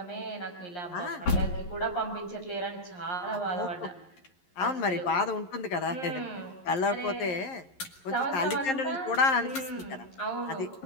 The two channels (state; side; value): late; right; 11 ms